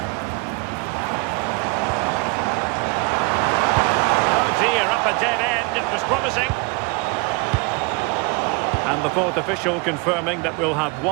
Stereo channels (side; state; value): left; quieter; 29.3 dB